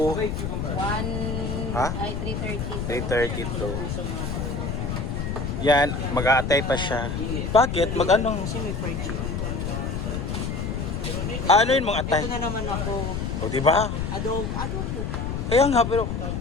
1... Ha? Ay, 330. 332. Yan, mag-aatay pa siya. Bakit? Mag-anong? Kasi may fried chicken. Ano yun mong atay? Ito na naman ako. O, di ba? Adobo. Kaya nga, pero...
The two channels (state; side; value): noise; left; rumble, 3 dB below the sound